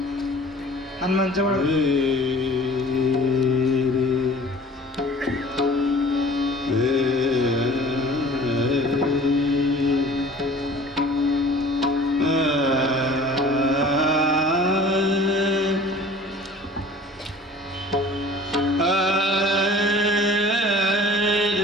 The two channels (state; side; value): normal; both; correlation 0.46